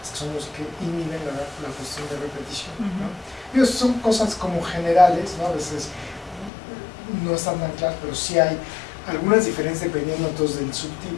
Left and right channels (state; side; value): drops out; right; at 6.5 s